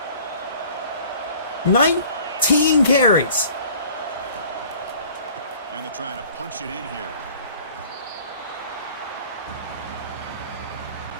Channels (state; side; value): inverted; both; correlation -0.50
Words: 19 carries. And they're trying to punch it in here.